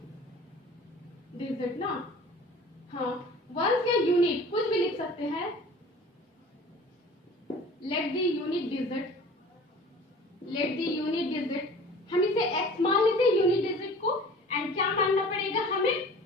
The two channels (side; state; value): both; normal; correlation 0.44